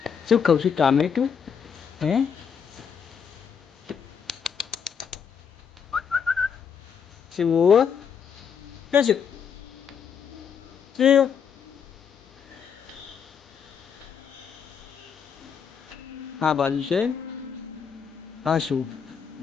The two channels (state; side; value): quieter; right; 7.1 dB